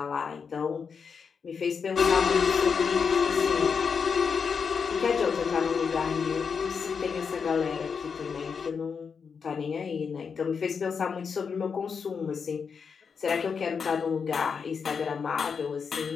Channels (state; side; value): quieter; right; 6.0 dB